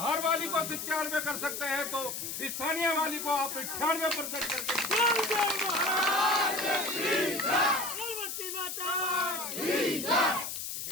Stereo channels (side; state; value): left; noise; hiss, 5 dB below the sound